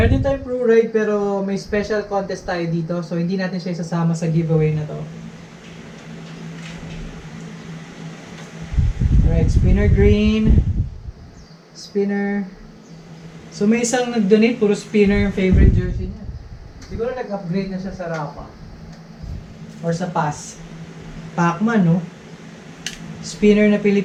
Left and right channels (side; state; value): both; identical; correlation 1.00